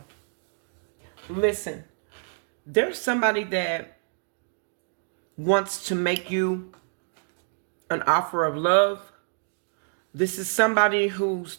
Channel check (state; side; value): silent; left; digital silence